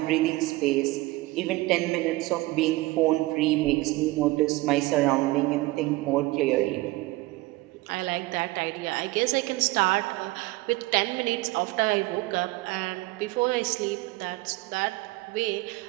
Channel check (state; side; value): quieter; left; 20.3 dB